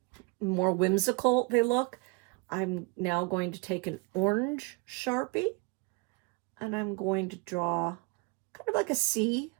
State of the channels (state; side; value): quieter; left; 29.5 dB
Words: whimsical they look. I'm now going to take an orange Sharpie and I'm going to draw kind of like a C,